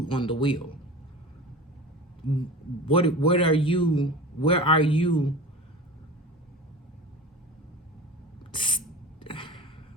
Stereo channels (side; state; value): both; normal; correlation 0.34